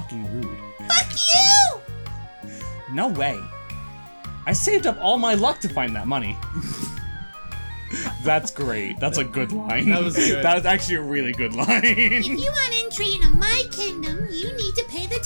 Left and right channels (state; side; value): inverted; both; correlation -1.00